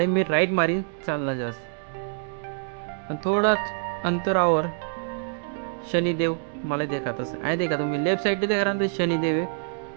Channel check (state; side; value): silent; left; digital silence